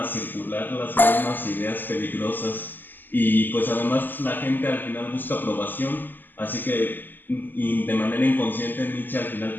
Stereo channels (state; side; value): late; right; 0.089 ms